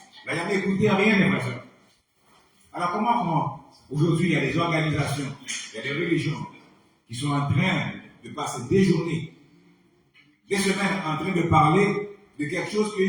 l'ont jamais écouté rien, mes frères et sœurs. Alors comment aujourd'hui il y a des organisations, il y a des religions qui sont en train de passer des journées, des semaines en train de parler de quelque chose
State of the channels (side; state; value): both; identical; correlation 1.00